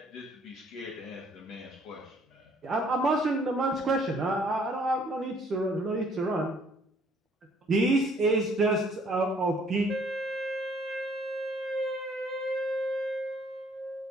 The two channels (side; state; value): both; normal; correlation 0.62